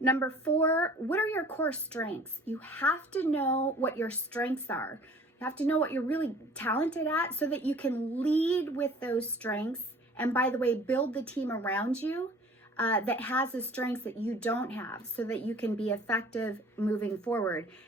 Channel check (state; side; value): normal; both; correlation 0.49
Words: Number 4, what are your core strengths? You have to know what your strengths are. You have to know what you're really talented at so that you can lead with those strengths. And by the way, build the team around you that has the strengths that you don't have so that you can be effective moving forward.